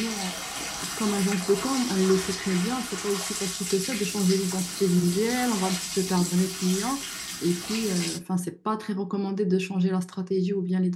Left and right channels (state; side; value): identical; both; correlation 1.00